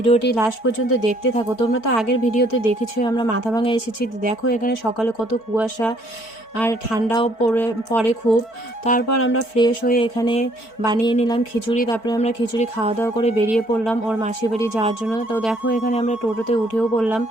লাস্ট পর্যন্ত দেখতে থাকো। তোমরা তো আগের ভিডিওতে দেখেছো আমরা মাথাভাঙা এসেছি। দেখো এখানে সকালে কত কুয়াশা আর ঠান্ডাও পড়ে খুব। তারপর আমরা ফ্রেশ হয়ে এখানে বানিয়ে নিলাম খিচুড়ি। তারপরে আমরা খিচুড়ি খাওয়া দাওয়া করে বেরিয়ে পড়লাম ওর মাসি বাড়ি যাওয়ার জন্য। তো দেখো এখানে আমরা টোটোতে উঠেও পড়লাম।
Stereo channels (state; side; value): late; right; 4.5 ms